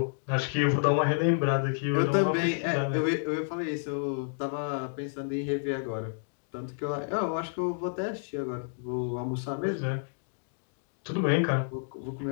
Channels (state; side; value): silent; right; digital silence